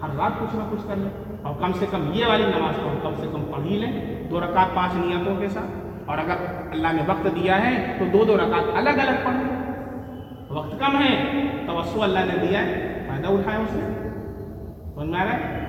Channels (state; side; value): identical; both; correlation 1.00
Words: ہر رات کچھ نہ کچھ کر لیں، اور کم سے کم یہ والی نماز کو ہم کم سے کم پڑھ ہی لیں 2 رکعت 5 نیتوں کے ساتھ. اور اگر اللہ نے وقت دیا ہے تو 2 رکعت الگ الگ پڑھ لیں. وقت کم ہے، توسع اللہ نے دیا ہے، فائدہ اٹھائے اس نے. سمجھ میں آ رہا ہے؟